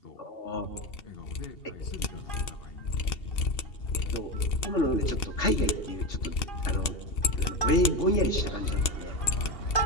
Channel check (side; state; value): right; late; 2.7 ms